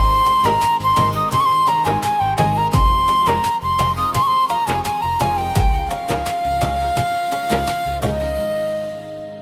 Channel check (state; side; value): identical; both; correlation 1.00